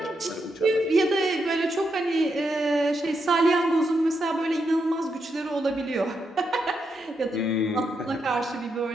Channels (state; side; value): normal; both; correlation 0.82